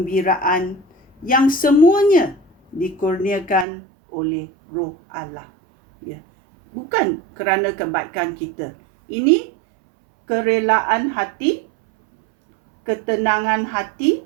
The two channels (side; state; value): left; drops out; at 3.7 s